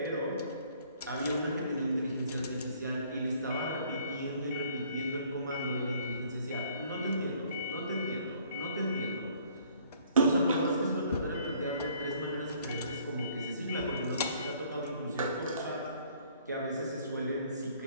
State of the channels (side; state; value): both; inverted; correlation -0.60